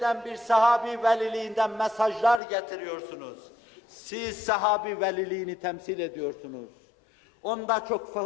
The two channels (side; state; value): right; drops out; at 2.4 s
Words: bir sahabi veliliğinden mesajlar getiriyorsunuz. Siz sahabi veliliğini temsil ediyorsunuz. Onda